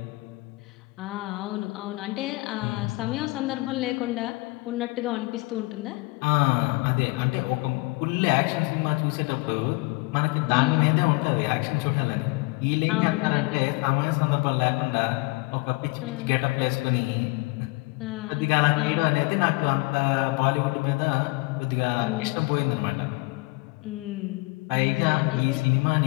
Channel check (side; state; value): right; quieter; 25.4 dB